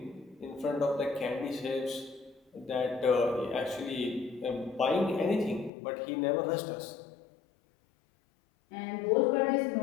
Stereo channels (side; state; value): right; drops out; at 5.7 s